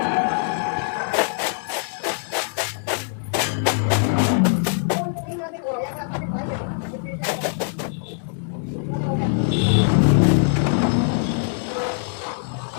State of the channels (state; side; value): silent; right; 64 dB below the other